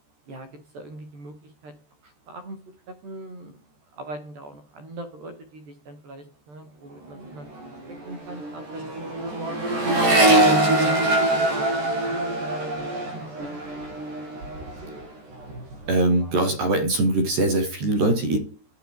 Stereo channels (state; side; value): late; left; 14 ms